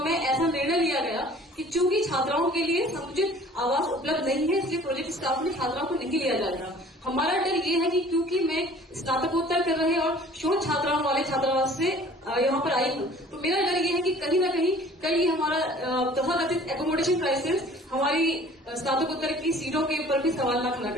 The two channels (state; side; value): normal; both; correlation 0.50